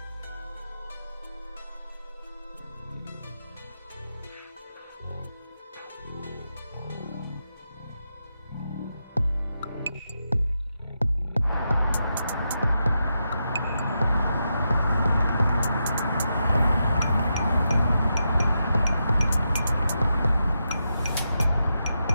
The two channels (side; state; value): both; inverted; correlation -0.86